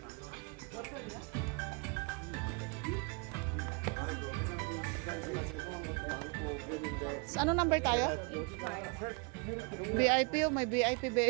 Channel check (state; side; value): quieter; left; 32.4 dB